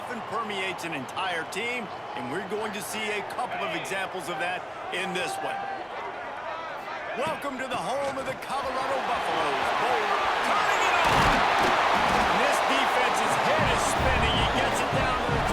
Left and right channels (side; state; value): both; identical; correlation 1.00